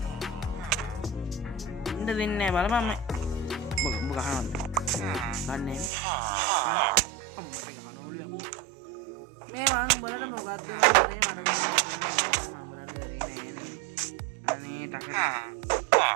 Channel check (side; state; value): left; drops out; at 5.9 s